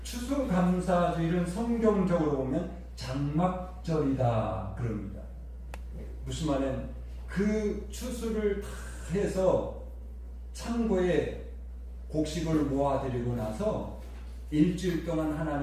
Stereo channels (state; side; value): identical; both; correlation 1.00